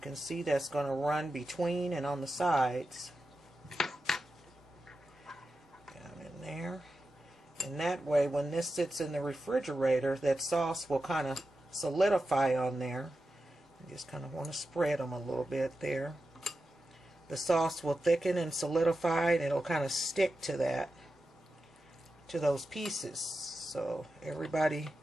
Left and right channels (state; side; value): normal; both; correlation 0.91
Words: see, that's going to run between and on the sides. Down in there. And that way, when this sits in the refrigerator, that sauce will kind of solidify on there. You just kind of want to spread them a little bit there. The sauce will thicken and solidify, and it'll kind of stick to that, to those pieces. So everybody